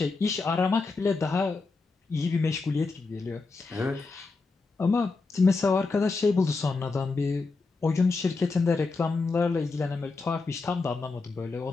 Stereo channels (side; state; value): right; quieter; 3.9 dB